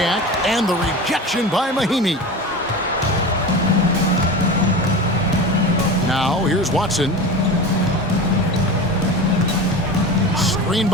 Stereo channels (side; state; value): both; normal; correlation 0.30